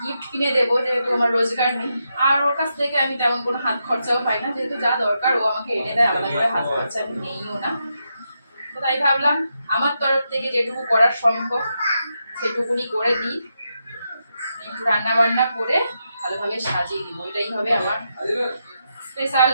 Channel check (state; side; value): inverted; both; correlation -0.84